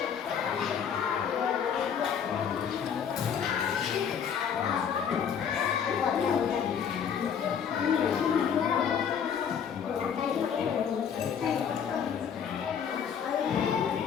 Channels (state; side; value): quieter; right; 7.6 dB